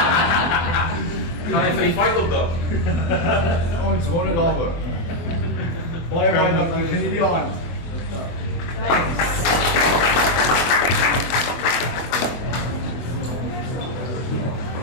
Gaan hy vir die fight opdag? Ons wonder daaroor. Baie dankie. Geniet die aand.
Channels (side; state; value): right; late; 24 ms